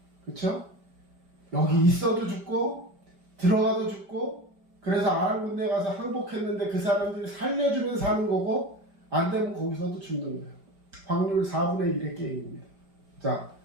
그렇죠? 여기 있어도 죽고 들어가도 죽고, 그래서 아람 군대에 가서 항복했는데 그 사람들이 살려주면 사는 거고, 안 되면 거기서도 죽는 거예요. 확률 4분의 1의 게임입니다. 자,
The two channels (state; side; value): late; left; 5.1 ms